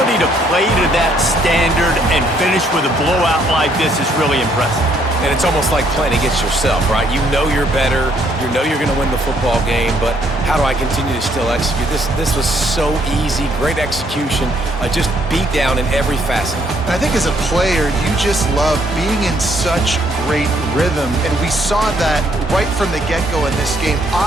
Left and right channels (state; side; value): normal; both; correlation 0.68